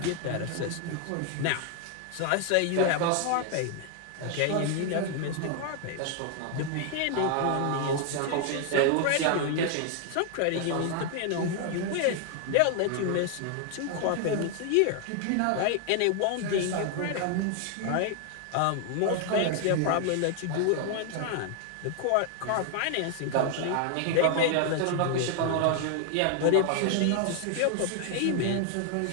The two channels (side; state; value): both; different; correlation 0.00